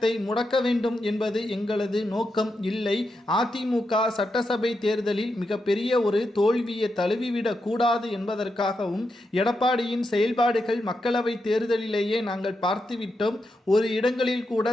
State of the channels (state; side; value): normal; both; correlation 0.85